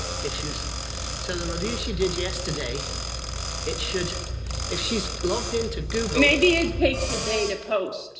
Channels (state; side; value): identical; both; correlation 1.00